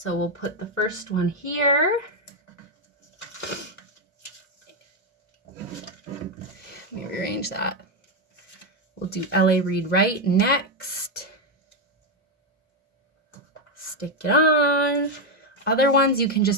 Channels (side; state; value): both; normal; correlation 0.05